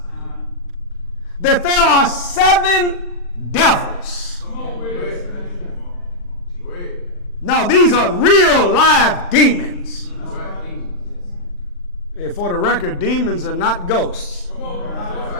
that there are 7 devils. Now, these are real live demons. For the record, demons are not ghosts.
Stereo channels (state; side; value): late; right; 40 ms